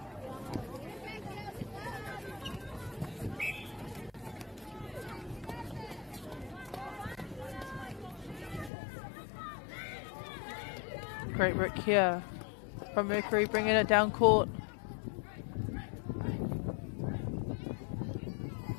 Great work here from Mercury, bringing it down court.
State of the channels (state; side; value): drops out; right; at 8.7 s